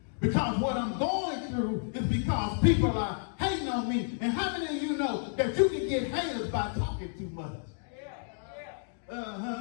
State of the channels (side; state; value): right; silent; digital silence